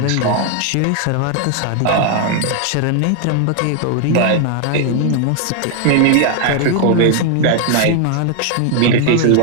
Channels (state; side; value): different; both; correlation 0.00